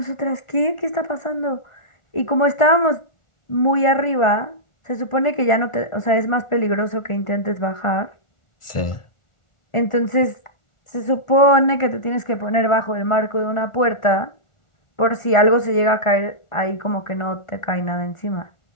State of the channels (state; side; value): late; right; 1.4 ms